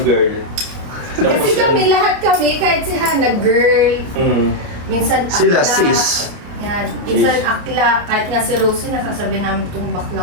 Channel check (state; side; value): late; left; 29 ms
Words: girl. Kasi kami, lahat kami, kahit si Hannah, girl. Minsan akla. Sila, sis. Yan. Minsan akla. Kahit nga si Rosie, nasasabi namin tumbak